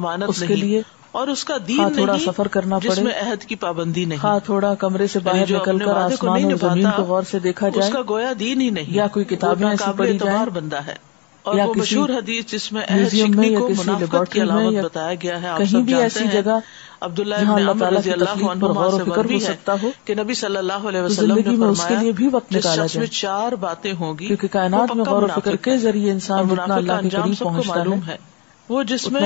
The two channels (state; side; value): quieter; right; 30.2 dB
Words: نہیں، اور اس کا دین نہیں جس میں عہد کی پابندی نہیں. تھوڑا کمرے سے یعنی جو اپنے وعدے کو نہیں نبھاتا اس کا گویا دین ہی نہیں، وہ ناقابل اعتبار بندہ ہے. اور وہ مشہور حدیث جس میں عہد شکنی کو منافقت کی علامت بتایا گیا ہے، آپ سب جانتے ہیں، عبداللہ ابن عمر رضی اللہ عنہما سے مروی ہے کہ نبی صلی اللہ علیہ وسلم نے فرمایا جس شخص میں 4 باتیں ہوں گی وہ پکا منافق ہے. اور منافق کا انجام سب کو معلوم ہے. وہ جس